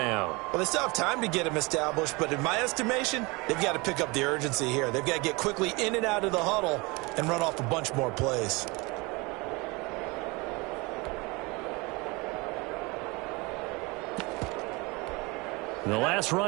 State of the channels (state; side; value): quieter; left; 25.8 dB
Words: Well, they still have time to get him established, but in my estimation, they've got to pick up the urgency here. They've got to get quickly in and out of the huddle and run off a bunch more plays. The last